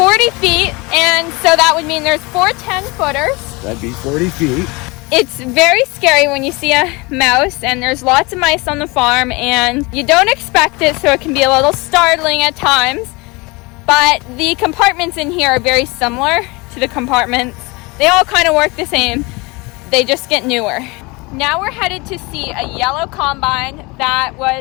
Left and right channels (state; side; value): quieter; right; 25.8 dB